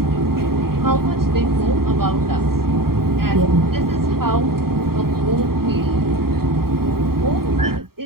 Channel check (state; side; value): late; left; 0.93 ms